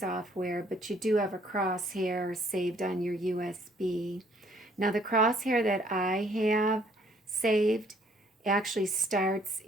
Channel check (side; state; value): both; normal; correlation 0.63